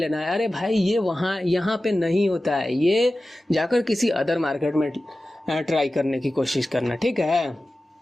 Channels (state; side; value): normal; both; correlation 0.95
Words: है। अरे भाई ये यहाँ पे नहीं होता है, ये जाकर किसी अदर मार्केट में ट्राई करने की कोशिश करना, ठीक है।